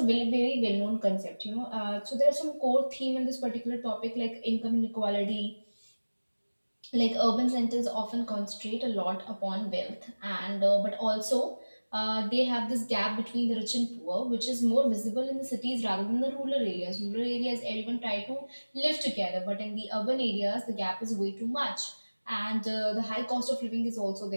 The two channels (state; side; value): inverted; both; correlation -1.00